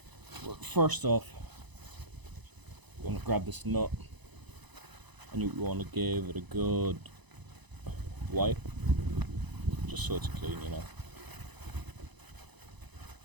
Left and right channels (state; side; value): late; left; 1.0 ms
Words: well, first off, you want to grab this nut, and you want to give it a good wipe, just so it's clean, you know.